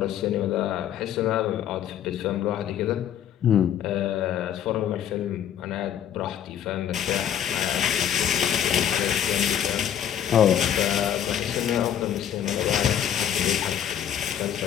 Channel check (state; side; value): quieter; right; 9.9 dB